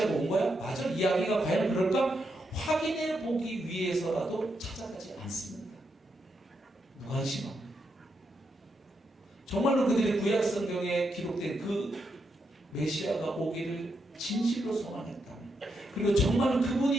온 거야? 맞아? 이야기가 과연 그럴까? 확인해 보기 위해서라도 찾아가지 않습니다. 무관심합니다. 정말로 그들이 구약 성경에 기록된 그 메시아가 오기를 진실로 소망했다면, 그리고 정말로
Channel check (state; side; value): normal; both; correlation 0.82